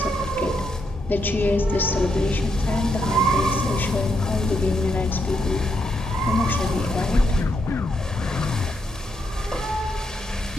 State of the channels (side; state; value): both; normal; correlation 0.80